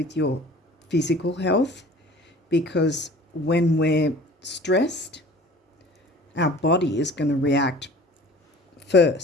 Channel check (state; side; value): normal; both; correlation 0.45